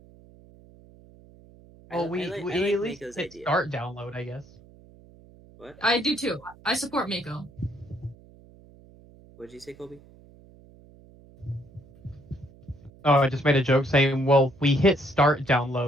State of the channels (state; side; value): noise; right; hum, 24 dB below the sound